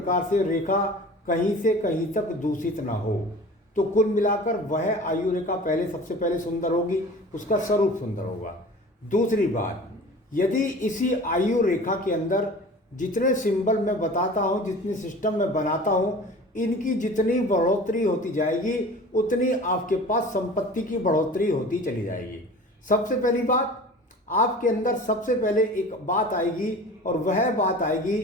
से रेखा कहीं से कहीं तक दूषित ना हो। तो कुल मिलाकर वह आयु रेखा पहले सबसे पहले सुंदर होगी, उसका स्वरूप सुंदर होगा। दूसरी बात, यदि इसी आयु रेखा के अंदर जितने सिंबल मैं बताता हूँ, जितने सिस्टम मैं बनाता हूँ, इनकी जितनी बढ़ोतरी होती जाएगी उतनी आपके पास संपत्ति की बढ़ोतरी होती चली जाएगी। सबसे पहली बात, आपके अंदर सबसे पहले एक बात आएगी और वह बात आएगी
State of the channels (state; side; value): normal; both; correlation 0.40